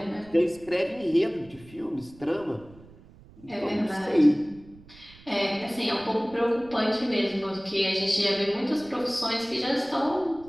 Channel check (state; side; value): noise; right; rumble, 23 dB below the sound